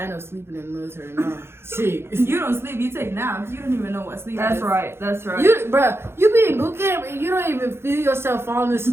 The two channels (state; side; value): late; left; 0.12 ms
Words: up sleeping in the military now. Shit. You don't sleep. You take naps. You don't even know what sleep That's is. right. That's right. You, bro, you be in boot camp and you don't even feel yourself falling